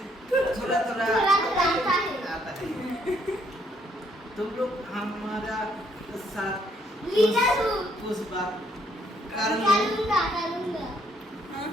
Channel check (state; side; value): normal; both; correlation 0.69